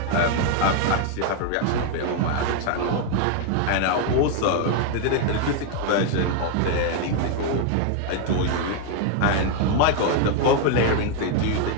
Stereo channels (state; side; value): different; both; correlation 0.00